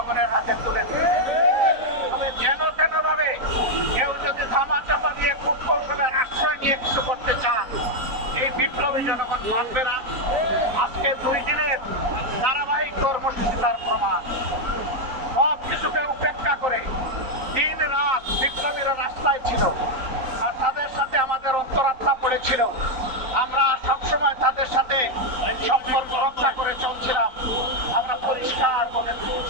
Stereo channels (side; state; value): left; late; 3.9 ms